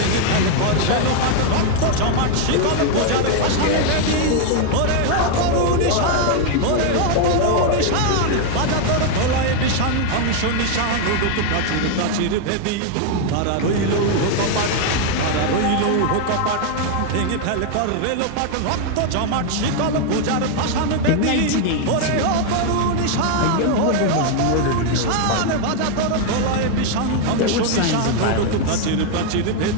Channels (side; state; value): both; different; correlation 0.00